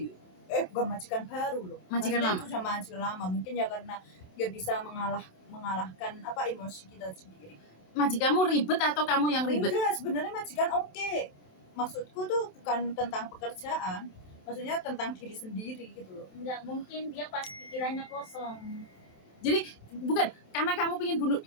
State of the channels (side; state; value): right; late; 27 ms